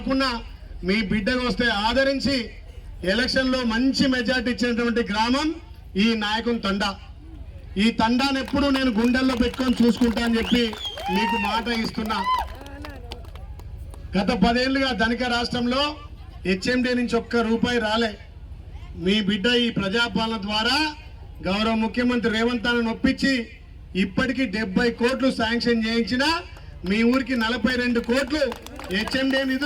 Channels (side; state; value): both; identical; correlation 1.00